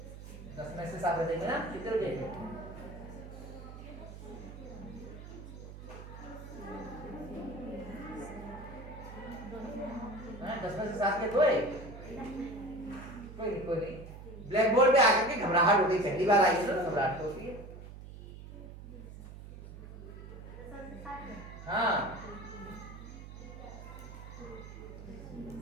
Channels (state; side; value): noise; right; hum, 13 dB below the sound